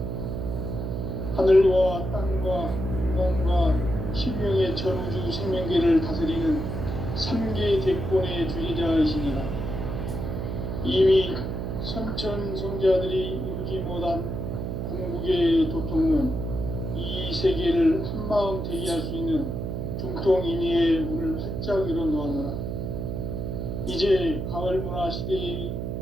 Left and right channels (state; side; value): noise; right; hum, 4 dB below the sound